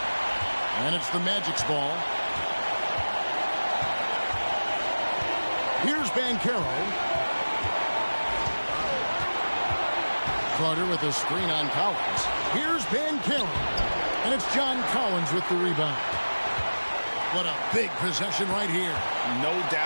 And it's the Magic's ball. Here's Banchero. Carter with a screen on Collins. Here's Banchero. And it's John Collins with the rebound. What a big possession right here. No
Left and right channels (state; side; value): inverted; both; correlation -1.00